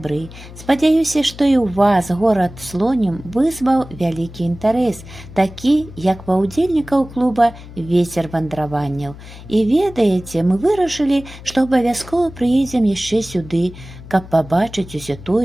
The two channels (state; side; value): noise; left; hum, 16 dB below the sound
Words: спадзяюся, што і ў вас горад Слонім вызваў вялікі інтарэс, такі, як ва ўдзельнікаў клуба «Вецер вандраванняў». І ведаеце, мы вырашылі, што абавязкова прыедзем яшчэ сюды, каб пабачыць усё